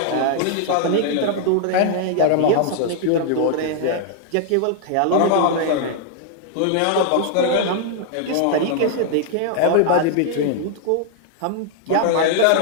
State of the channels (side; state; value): both; different; correlation 0.00